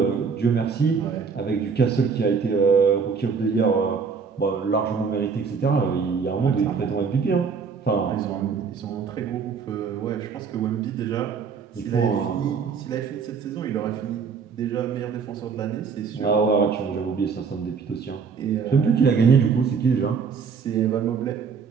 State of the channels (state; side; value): quieter; left; 5.8 dB